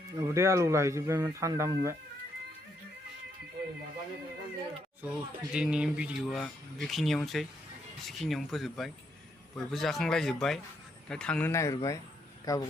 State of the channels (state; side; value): normal; both; correlation 0.76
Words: उदै आलौ लाहैजोबबायमोन थान्दा मोनबाय स' दिनैनि भिडिअ'आ बेखिनियावनोसै एसेखिनियावनो फोजोबबाय बयबो जाखांलायजोब्बाय दा थांनो नागिरबाय